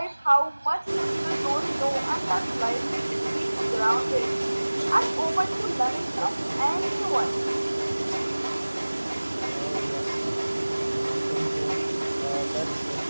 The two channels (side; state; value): both; inverted; correlation -1.00